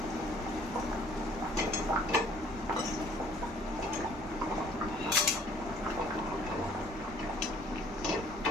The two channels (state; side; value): normal; both; correlation 0.57